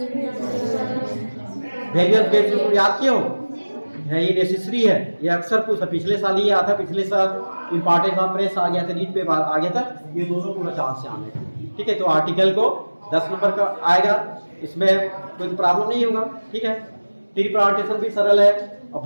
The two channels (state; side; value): inverted; both; correlation -1.00